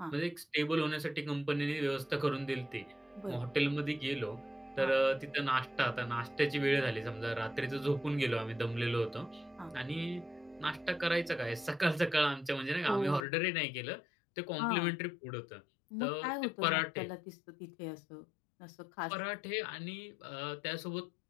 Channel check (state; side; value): drops out; right; at 13.2 s